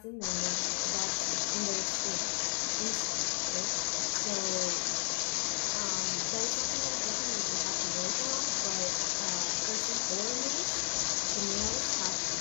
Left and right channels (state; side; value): silent; right; 56 dB below the other